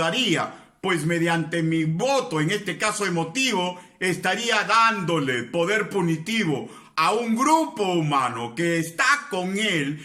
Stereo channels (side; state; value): both; identical; correlation 1.00